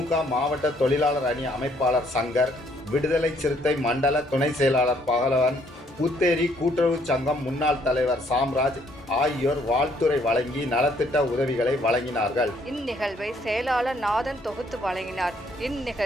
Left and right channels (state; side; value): normal; both; correlation 0.67